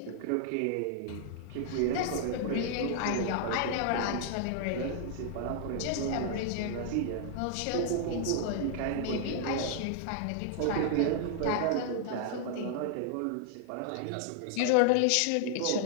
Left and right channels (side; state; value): both; different; correlation 0.00